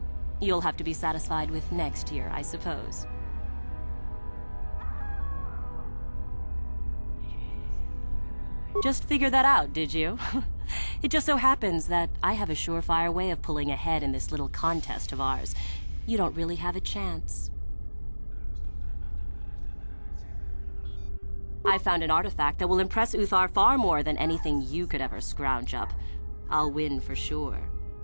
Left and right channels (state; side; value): inverted; both; correlation -1.00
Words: You'll have to be satisfied with next year, I suppose. Just figured that out, did you? It just so happens that I have a surefire way of pulling ahead in this little contest of ours. You don't really have a chance. I found an artifact that will impress Uthar far more than anything you could ever scrounge up. I'll win for sure.